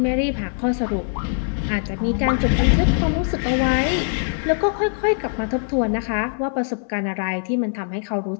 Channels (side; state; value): right; silent; digital silence